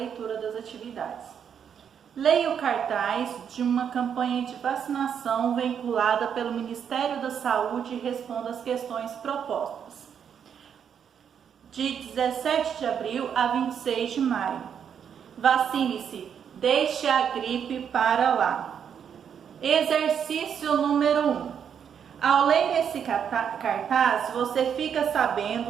das atividades. Leia o cartaz de uma campanha de vacinação vinculada pelo Ministério da Saúde e responda as questões propostas. De 17 de abril a 26 de maio. Vacine-se, deixe a gripe para lá. Exercício número 1. Ao ler esse cartaz, você fica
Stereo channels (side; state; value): left; quieter; 7.9 dB